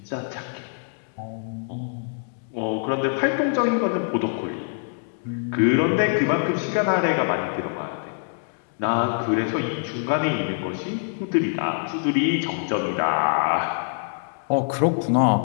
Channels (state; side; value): silent; right; digital silence